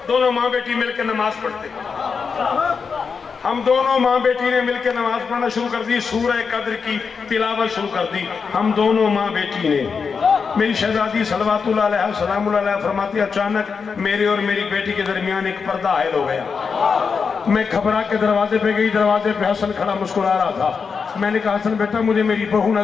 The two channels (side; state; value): right; quieter; 5.6 dB